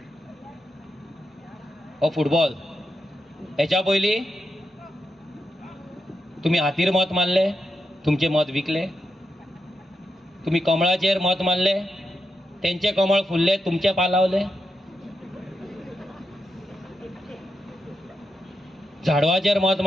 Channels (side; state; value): both; normal; correlation 0.85